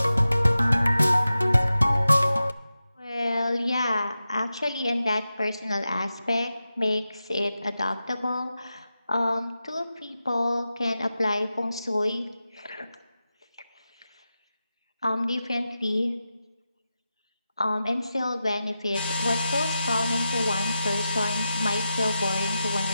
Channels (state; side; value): inverted; both; correlation -0.91